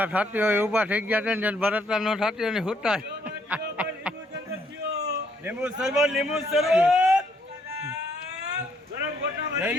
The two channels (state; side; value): normal; both; correlation 0.70